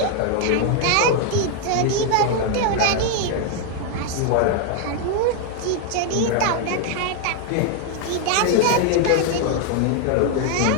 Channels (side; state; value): both; different; correlation 0.00